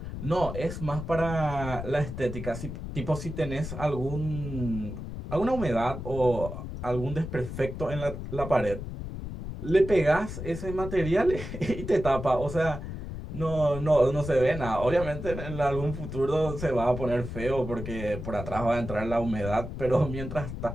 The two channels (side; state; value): left; noise; rumble, 8 dB below the sound